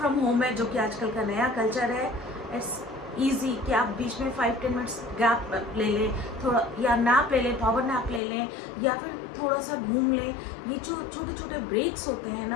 होम है, जो कि आजकल का नया कल्चर है, इट्स ईजी कि आप बीच में 5-10 मिनट्स गैप ले लें, थोड़ा या नैप ले लें, पावर नैप ले लें, या फिर थोड़ा सा घूम लें। ये जो छोटे छोटे ब्रेक्स होते हैं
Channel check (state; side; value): drops out; right; at 8.2 s